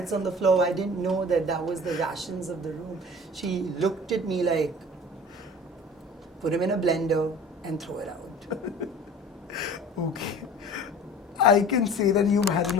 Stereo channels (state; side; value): normal; both; correlation 0.42